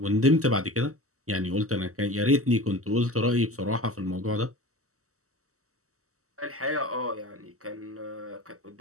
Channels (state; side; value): late; left; 0.64 ms